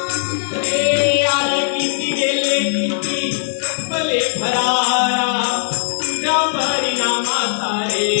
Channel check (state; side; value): silent; right; 59 dB below the other